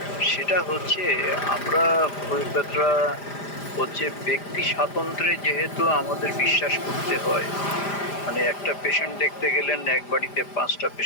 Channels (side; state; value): right; late; 5.0 ms